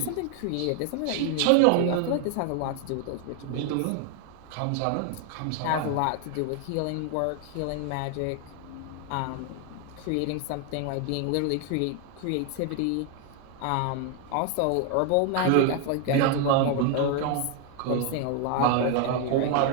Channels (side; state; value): both; different; correlation 0.01